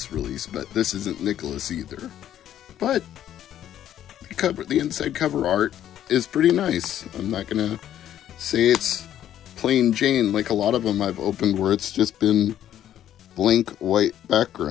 release, but this isn't Nicholas either. But the inside cover art is pretty nice. I'm not gonna say it's plain Jane like a lot of them I've opened where it's just been blank white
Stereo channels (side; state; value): right; quieter; 11.3 dB